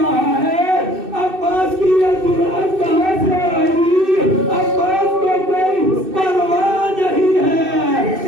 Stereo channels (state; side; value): late; left; 2.6 ms